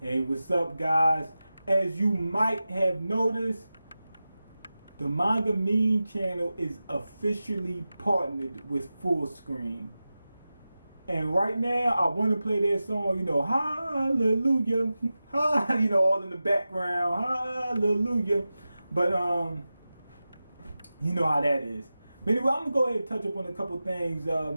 Hey, what's up, guys? As you might have noticed, the MangaMiyn channel is officially partnered with Full Screen. And right now, I want to play that song, hallelujah, all in the background, hallelujah. But, you know how that is. But anyway, I'm going to go ahead and touch up on a couple things.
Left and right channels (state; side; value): inverted; both; correlation -0.94